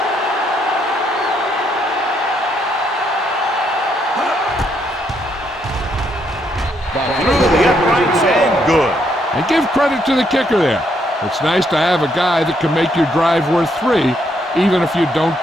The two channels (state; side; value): normal; both; correlation 0.74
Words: Through the uprights and good. And give credit to the kicker there. It's nice to have a guy that can make your drive worth 3, even if you don't